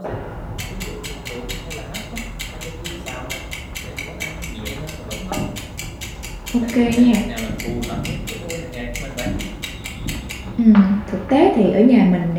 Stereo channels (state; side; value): identical; both; correlation 1.00